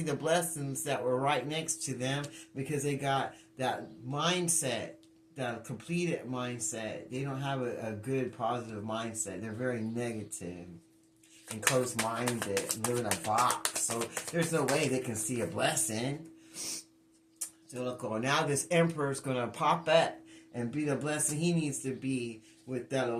the blessings that were right next to them because they got that mindset. The completed mindset. They don't have a good, positive mindset. They're very negative and closed-minded and live in a box. So there's no way they can see a blessing. So look, now this emperor is going to pop up and be the blessing he needs to be with that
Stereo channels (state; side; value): identical; both; correlation 1.00